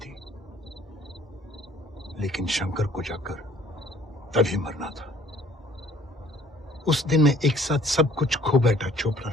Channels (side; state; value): both; normal; correlation 0.57